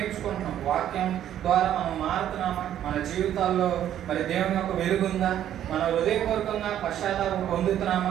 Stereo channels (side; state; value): left; quieter; 11.0 dB